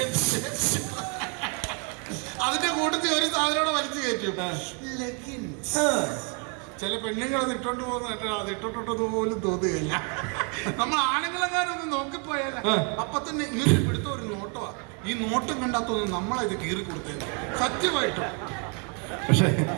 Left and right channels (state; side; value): quieter; left; 37.0 dB